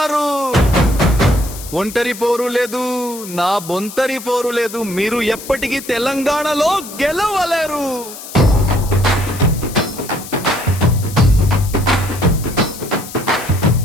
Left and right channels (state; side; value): noise; left; hiss, 13 dB below the sound